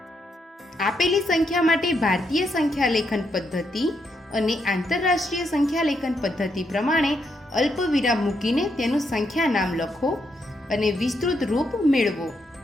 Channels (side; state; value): both; normal; correlation 0.79